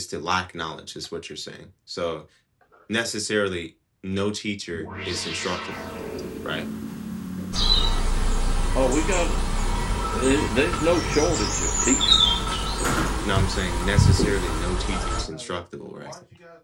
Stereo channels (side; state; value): both; identical; correlation 1.00